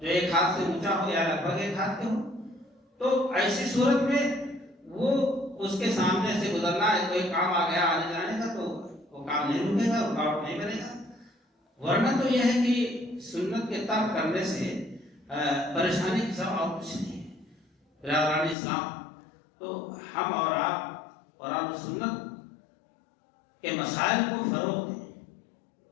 ایک ہاتھ سے اونچا ہو یا لگ بھگ ایک ہاتھ کے ہو، تو ایسی صورت میں وہ اس کے سامنے سے گزرنا ہے، کوئی کام آ گیا آنے جانے کا تو وہ کام نہیں رکے گا، رکاوٹ نہیں بنے گا۔ ورنہ تو یہ ہے کہ سنت کے ترک کرنے سے پریشانی کی سب اور کچھ نہیں ہے۔ برادران اسلام، تو ہم اور آپ قرآن و سنت کے مسائل کو فروغ دیں،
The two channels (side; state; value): right; drops out; at 18.6 s